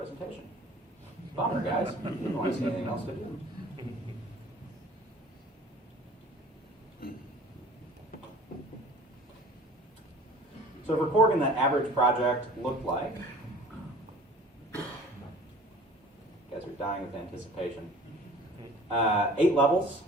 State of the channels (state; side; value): normal; both; correlation 0.46